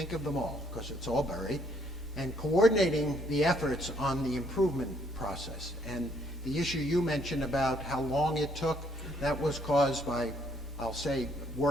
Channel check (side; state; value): both; normal; correlation 0.67